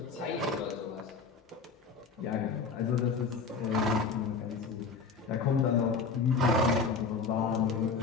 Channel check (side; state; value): right; quieter; 4.9 dB